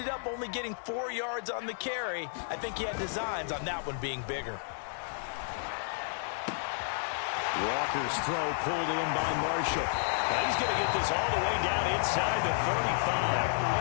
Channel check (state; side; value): silent; right; digital silence